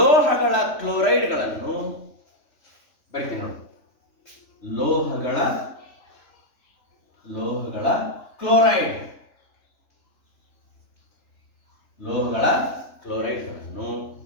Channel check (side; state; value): right; late; 3.4 ms